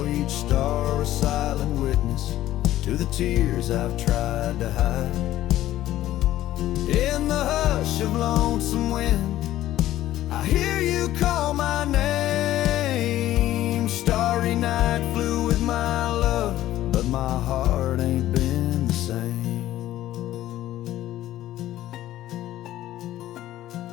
each star a silent witness to the tears I've tried to hide. In the hush of lonesome wind, I hear you call my name. Starry night flew with my love, but my heart ain't been the same.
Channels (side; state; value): right; quieter; 14.0 dB